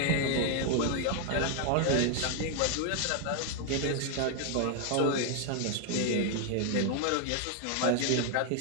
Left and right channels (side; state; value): both; different; correlation 0.00